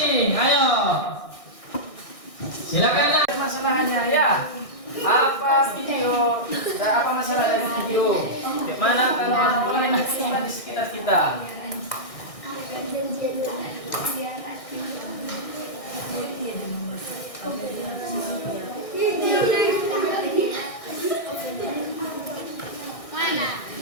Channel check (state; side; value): late; right; 1.6 ms